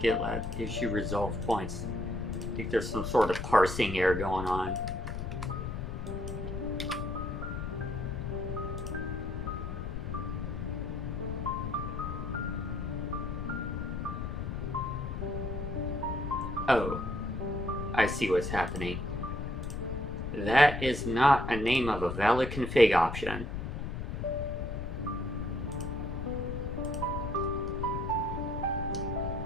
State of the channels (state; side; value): noise; left; rumble, 4 dB below the sound